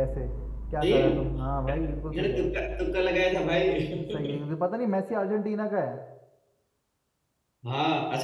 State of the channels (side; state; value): both; identical; correlation 1.00